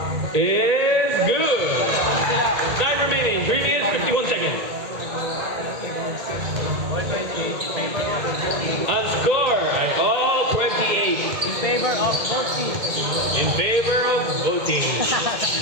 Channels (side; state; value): left; late; 1.8 ms